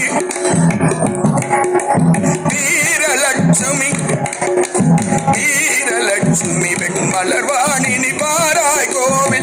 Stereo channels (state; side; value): identical; both; correlation 1.00